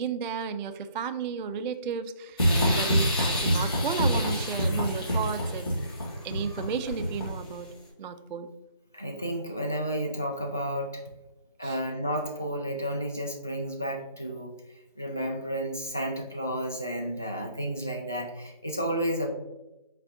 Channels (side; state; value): both; inverted; correlation -0.59